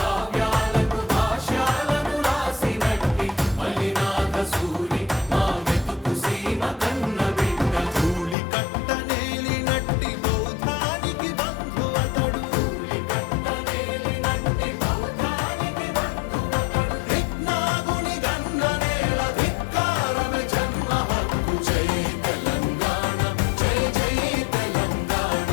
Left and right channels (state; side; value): drops out; right; at 8.3 s